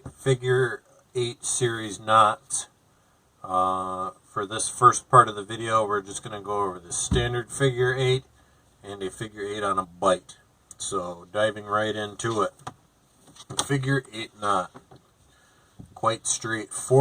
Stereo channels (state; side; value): identical; both; correlation 1.00